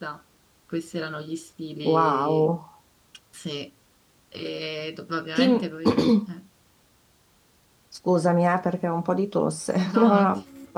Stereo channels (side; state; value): both; identical; correlation 1.00